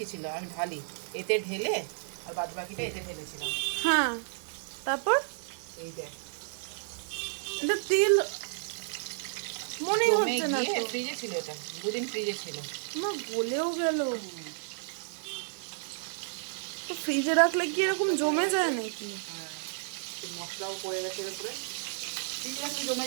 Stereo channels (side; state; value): left; silent; digital silence